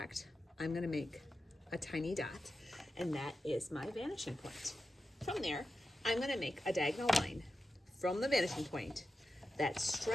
I'm gonna make a tiny dot, and that is my vanishing point. From there, I'm gonna make a diagonal line from the vanishing point that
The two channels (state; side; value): normal; both; correlation 0.91